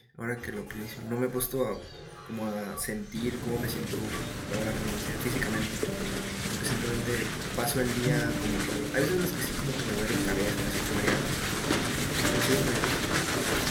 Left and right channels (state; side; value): identical; both; correlation 1.00